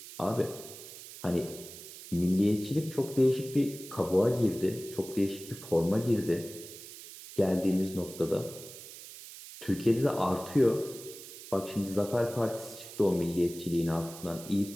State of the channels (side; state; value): right; noise; hiss, 14 dB below the sound